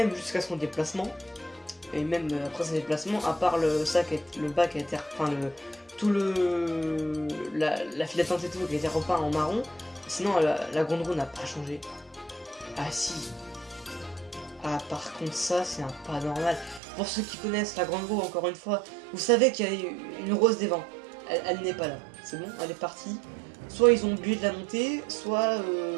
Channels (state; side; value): drops out; left; at 16.8 s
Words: jusqu'à son déplacement. Et même après son déplacement, à part le bas qui a été, enfin la file d'attente et tout qui a été repeint en marron. Sinon la grande roue n'a pas changé. Ah si. Ah par contre ça c'est un pas normal. Pour ceux qui connaissent la grande roue, encore une fois, vous savez qu'il y a une rose des vents. Elle n'est pas là. C'est bon, elle est partie. Soit ils ont oublié de la monter, soit